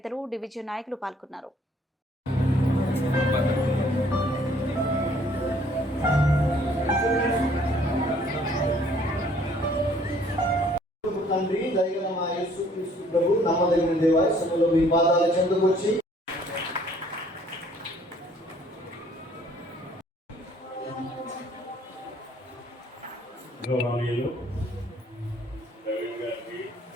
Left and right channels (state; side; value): normal; both; correlation 0.60